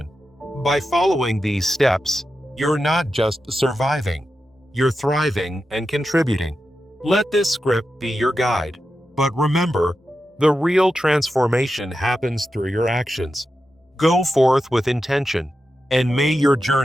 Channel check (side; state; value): both; normal; correlation 0.90